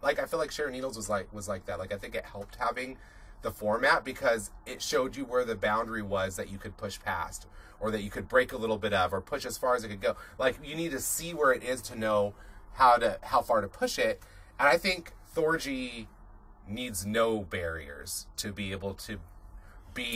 Like, I feel like Sharon Needles was like that. Like, I think it helped having the format because it showed you where the boundary was that you could push past, or that you could break a little bit of, or push as far as it could go. Like, you need to see where it is to know how far to push it. And I think Thorgy needs no barriers to be able to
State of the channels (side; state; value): both; identical; correlation 1.00